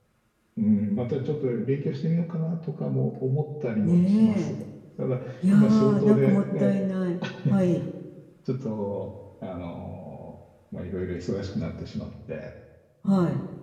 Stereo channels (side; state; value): both; identical; correlation 1.00